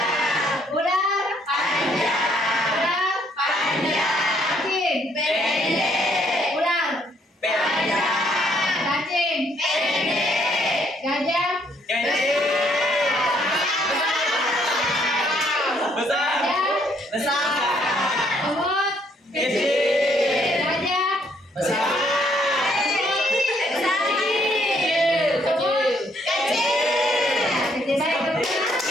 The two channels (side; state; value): both; normal; correlation 0.68